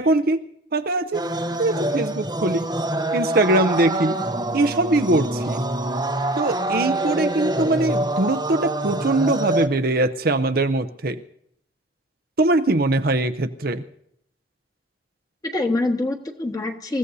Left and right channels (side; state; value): both; normal; correlation 0.42